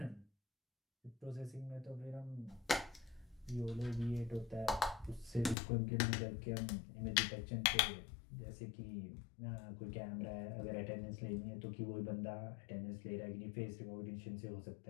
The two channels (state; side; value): drops out; right; at 5.6 s